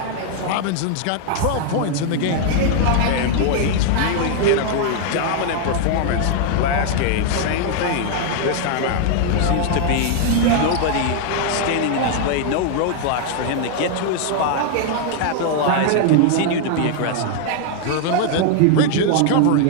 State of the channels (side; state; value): both; different; correlation 0.00